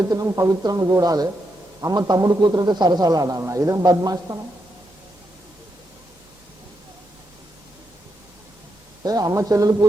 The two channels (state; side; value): normal; both; correlation 0.82